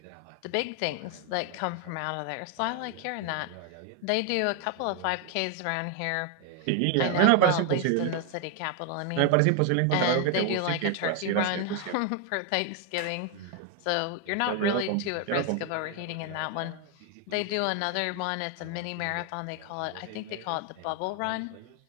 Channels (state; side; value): different; both; correlation 0.01